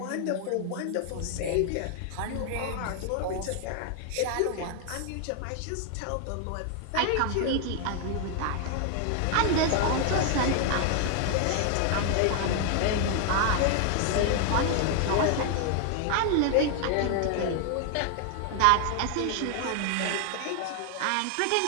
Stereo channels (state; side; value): different; both; correlation 0.00